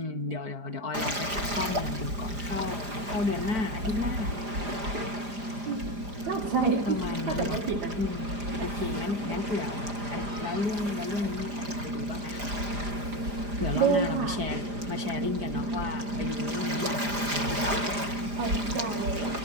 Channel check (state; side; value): late; left; 4.9 ms